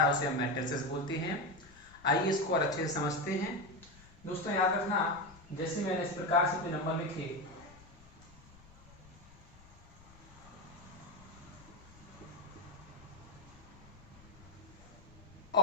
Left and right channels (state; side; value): noise; left; rumble, 22 dB below the sound